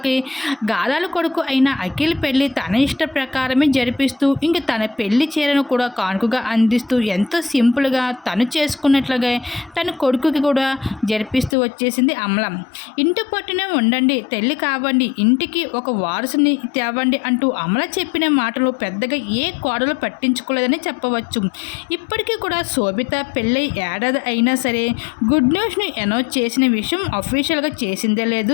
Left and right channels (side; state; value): right; drops out; at 11.6 s